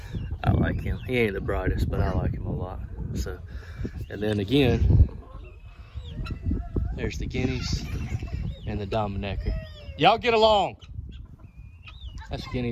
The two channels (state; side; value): identical; both; correlation 1.00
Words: I like him. He ain't the brightest, but I like him a lot. So, and then again, there's the guineas and the Dominecker. Y'all get along. That's